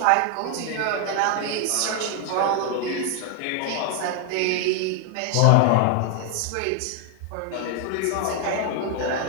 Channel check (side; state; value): both; different; correlation 0.00